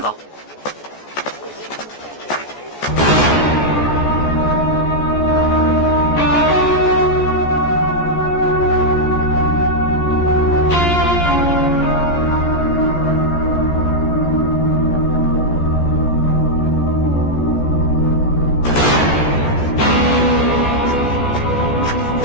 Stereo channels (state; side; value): late; right; 14 ms